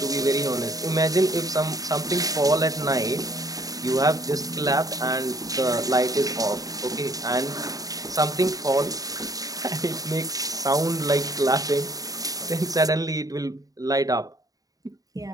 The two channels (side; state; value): left; late; 0.18 ms